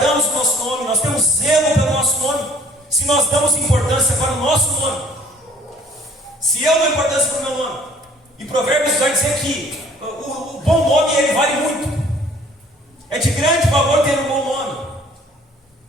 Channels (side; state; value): both; normal; correlation 0.56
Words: o nosso nome, nós temos zelo pelo nosso nome. Se nós damos importância para o nosso nome, se eu dou importância para o meu nome, e Provérbios vai dizer que o bom nome ele vale muito, é de grande valor ter um bom nome,